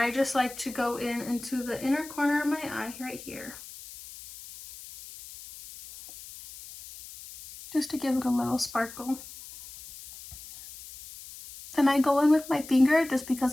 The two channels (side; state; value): left; noise; hiss, 15 dB below the sound